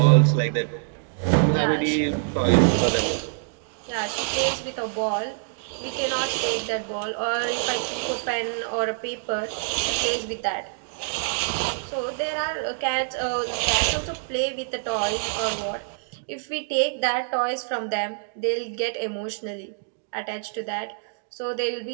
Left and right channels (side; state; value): left; silent; digital silence